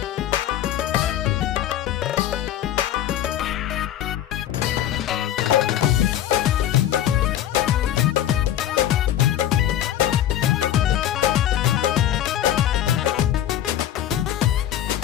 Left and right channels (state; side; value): quieter; right; 11.6 dB